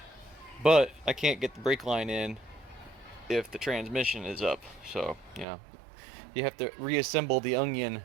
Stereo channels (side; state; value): left; drops out; at 5.5 s